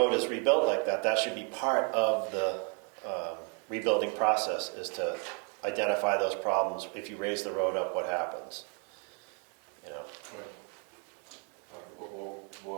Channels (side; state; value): left; quieter; 38.6 dB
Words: is rebuilt like that, that should be part of the rebuilding process, is to identify those problems. If you raise the road up, what happens?